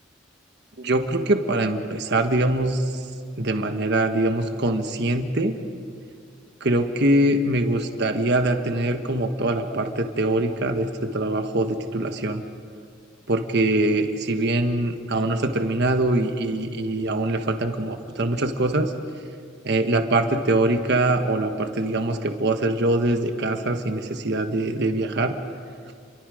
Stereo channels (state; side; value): normal; both; correlation 0.39